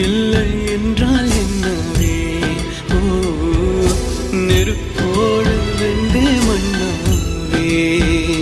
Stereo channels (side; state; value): both; identical; correlation 1.00